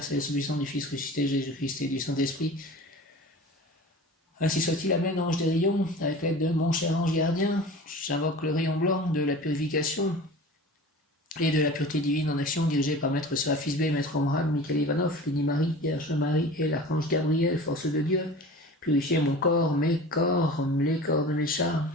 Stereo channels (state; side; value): normal; both; correlation 0.38